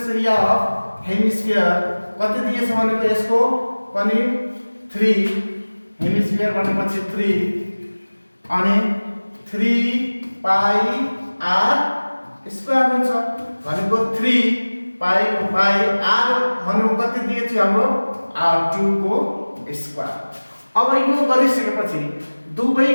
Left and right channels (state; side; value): inverted; both; correlation -1.00